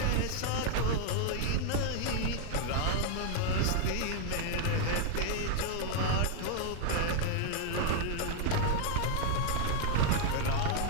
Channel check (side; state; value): both; different; correlation 0.00